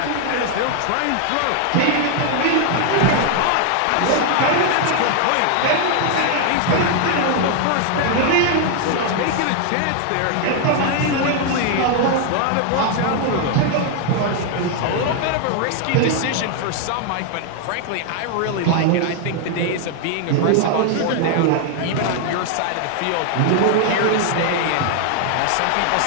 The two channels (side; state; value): both; different; correlation 0.00